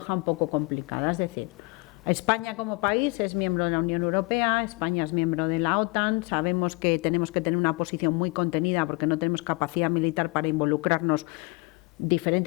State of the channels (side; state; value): right; quieter; 27.3 dB